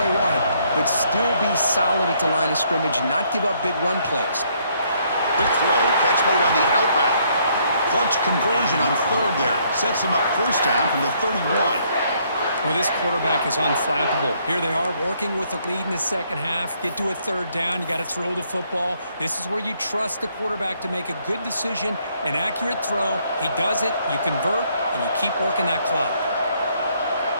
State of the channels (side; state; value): both; inverted; correlation -0.69